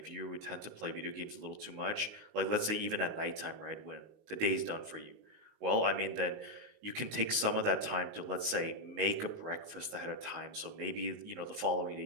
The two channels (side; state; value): left; late; 19 ms